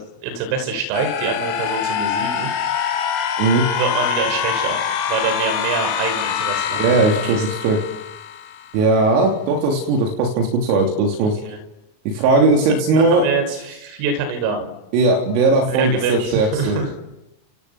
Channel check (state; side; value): late; left; 37 ms